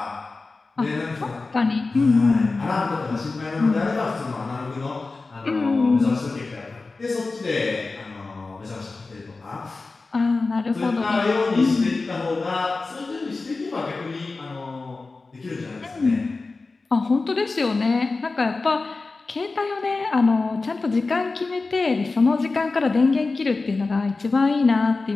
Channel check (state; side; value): quieter; right; 3.7 dB